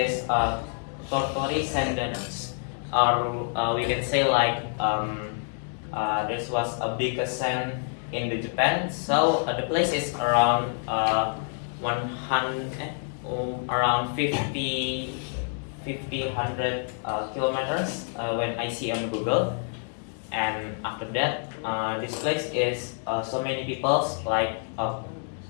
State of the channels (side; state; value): right; silent; 60 dB below the other